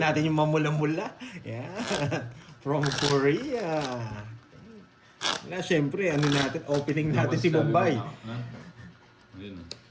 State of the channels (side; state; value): both; identical; correlation 1.00